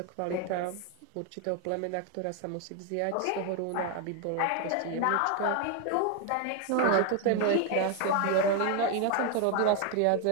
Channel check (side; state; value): both; different; correlation 0.01